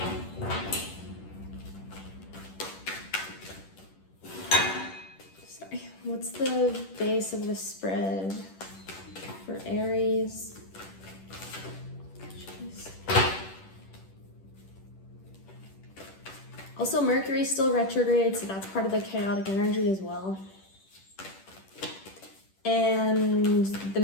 Sorry, what's the base of the spread for Aries? Jeez. Also, Mercury's still retrograde, so that's part of the chaotic energy as well. And the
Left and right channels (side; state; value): right; late; 10 ms